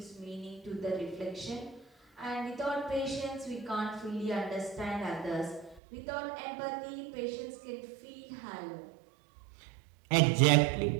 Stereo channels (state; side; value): drops out; left; at 5.8 s